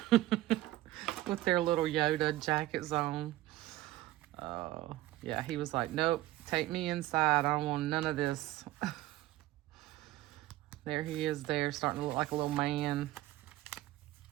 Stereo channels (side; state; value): left; quieter; 16.1 dB